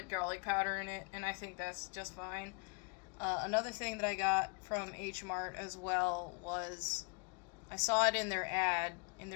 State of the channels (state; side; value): quieter; right; 34.6 dB